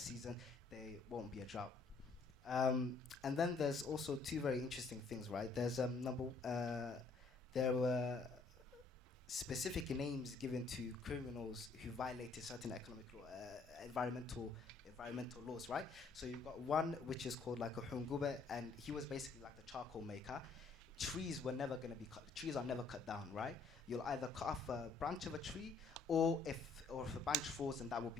there won't be a drought. And then there's also two very interesting things, right? There's there were specific names given to criminals who violated certain economic law, environmental laws, right? So you've got one which is called like a hungube, and he was basically like the charcoal maker. Trees are never cut down, right? You'll either cut off a branch of a tree, or if a branch falls, and that will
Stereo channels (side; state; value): right; quieter; 3.9 dB